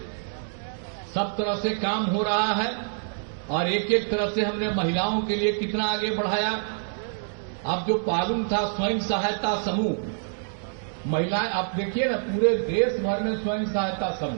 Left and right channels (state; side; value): silent; left; digital silence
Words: सब तरह से काम हो रहा है और एक एक तरह से हमने महिलाओं के लिए कितना आगे बढ़ाया। अब जो पालुम था स्वयं सहायता समूह, महिलाएं, आप देखिए ना पूरे देश भर में स्वयं सहायता